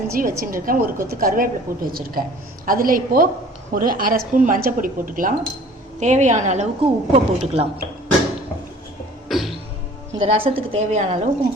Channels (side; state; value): both; normal; correlation 0.49